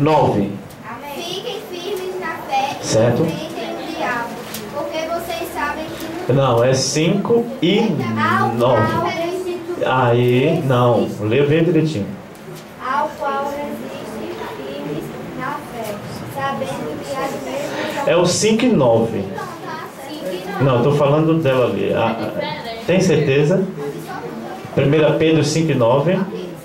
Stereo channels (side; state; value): both; identical; correlation 1.00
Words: Fiquem firmes na fé e Certo. enfrentem o diabo, porque vocês sabem que Não, é 5 e 9. Aí, não, lê bem direitinho. ao qual resistem firmes na fé, sabendo que as mesmas É o 5 e 9. Não, estou falando dela ali. Tem certeza? 1 Pedro 5 e 9.